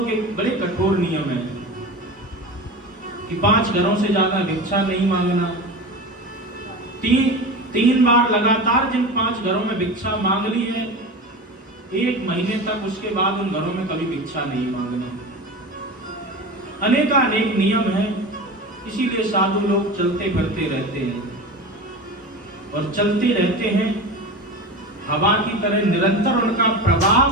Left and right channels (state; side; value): normal; both; correlation 0.29